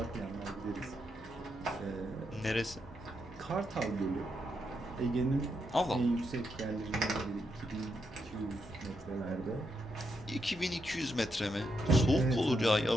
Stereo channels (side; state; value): both; normal; correlation 0.81